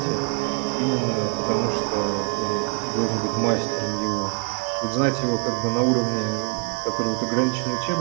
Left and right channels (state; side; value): quieter; left; 38.9 dB